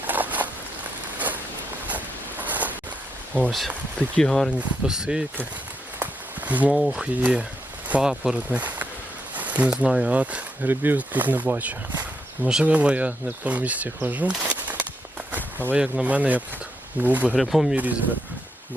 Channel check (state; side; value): normal; both; correlation 0.80